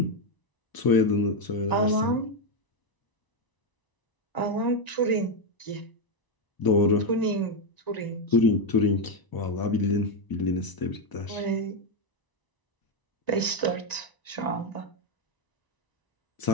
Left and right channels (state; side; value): late; right; 1.0 ms